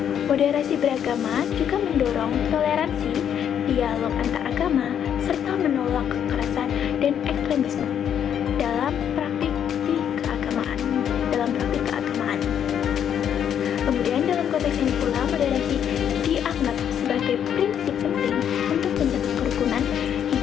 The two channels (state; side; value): quieter; right; 9.0 dB